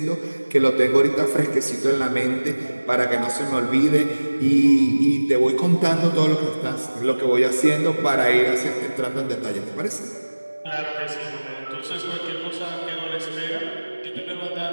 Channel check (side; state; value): both; inverted; correlation -1.00